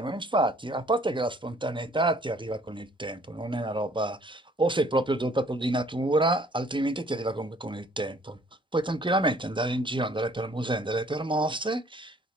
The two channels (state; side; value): normal; both; correlation 0.59